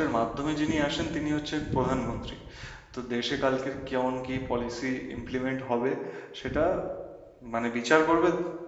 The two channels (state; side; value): identical; both; correlation 1.00